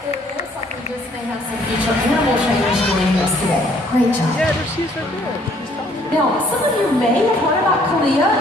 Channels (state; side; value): normal; both; correlation 0.62